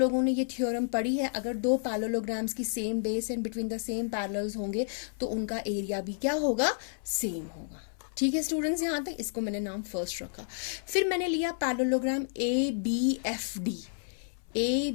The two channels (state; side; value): silent; right; 57 dB below the other